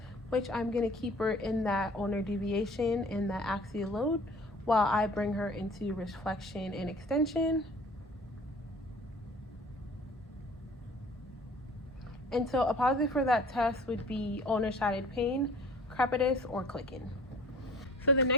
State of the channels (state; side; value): normal; both; correlation 0.48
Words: which I'm going to keep her in that ulnar deviation and that axial load while I bring her into wrist flexion and extension. And so a positive for that test would be ulnar sided pain, crepitus, or clicking. So the